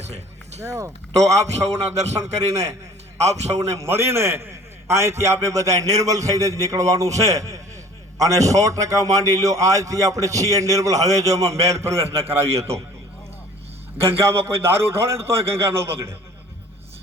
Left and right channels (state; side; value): normal; both; correlation 0.49